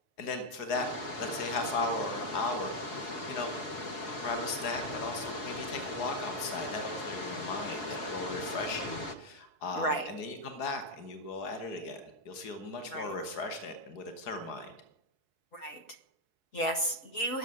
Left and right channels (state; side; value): late; right; 4.7 ms